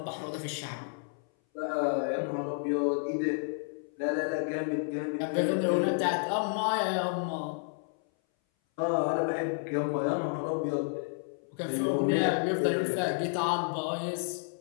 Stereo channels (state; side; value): silent; right; 57 dB below the other